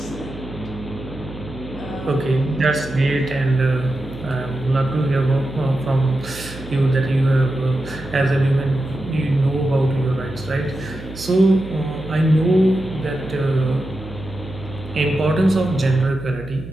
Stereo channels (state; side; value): noise; right; hum, 13 dB below the sound